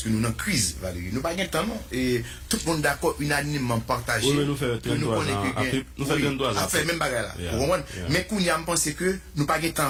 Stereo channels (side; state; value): both; identical; correlation 1.00